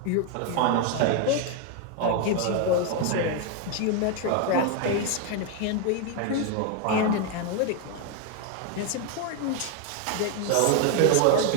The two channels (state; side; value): different; both; correlation 0.01